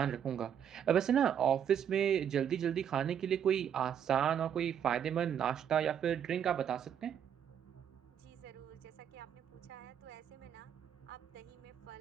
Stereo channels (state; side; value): quieter; left; 8.8 dB